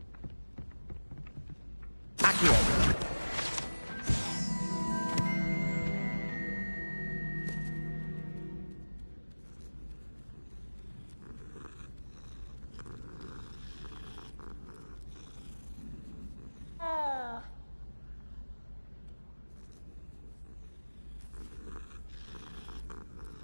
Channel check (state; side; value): inverted; both; correlation -1.00